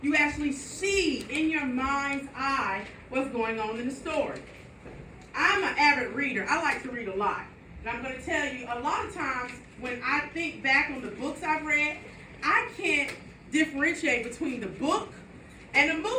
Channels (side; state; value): both; identical; correlation 1.00